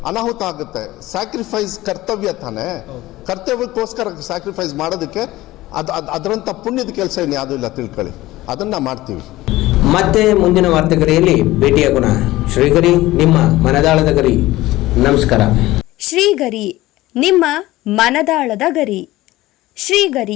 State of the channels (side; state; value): right; quieter; 17.5 dB